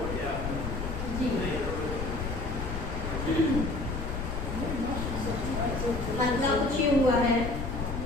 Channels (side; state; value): left; noise; rumble, 4 dB below the sound